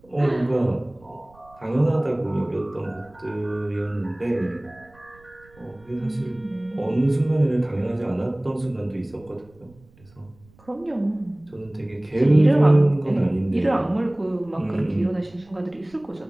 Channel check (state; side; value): noise; right; rumble, 28 dB below the sound